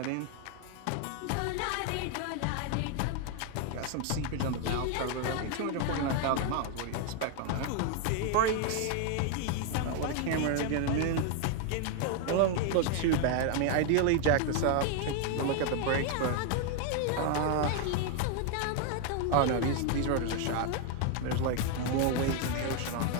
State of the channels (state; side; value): different; both; correlation 0.00